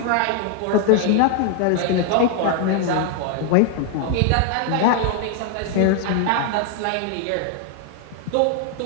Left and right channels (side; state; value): both; different; correlation 0.00